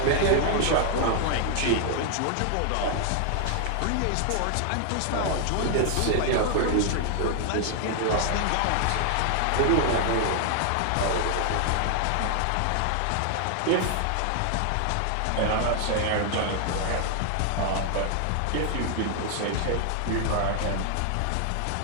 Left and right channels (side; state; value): both; different; correlation 0.00